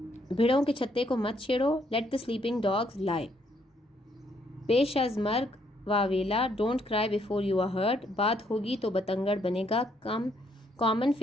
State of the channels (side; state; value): both; normal; correlation 0.71